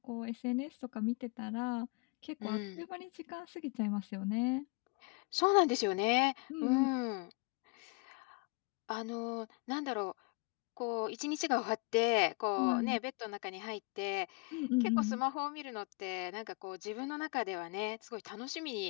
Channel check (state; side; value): quieter; right; 29.6 dB